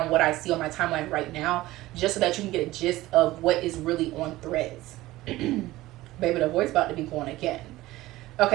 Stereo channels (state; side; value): quieter; left; 17.5 dB